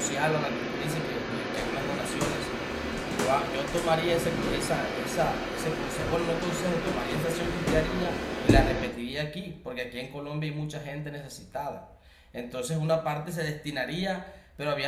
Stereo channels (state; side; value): identical; both; correlation 1.00